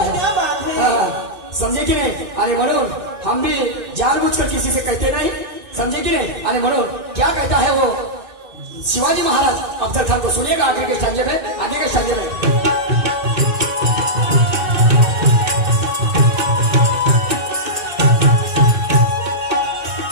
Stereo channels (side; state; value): left; late; 2.6 ms